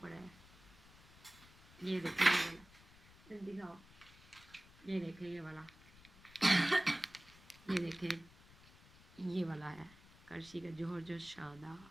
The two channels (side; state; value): left; noise; rumble, 23 dB below the sound